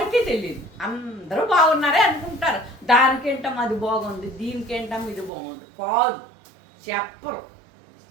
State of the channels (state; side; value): drops out; left; at 5.3 s